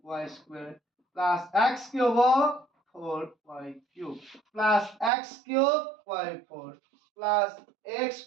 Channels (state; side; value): drops out; left; at 5.1 s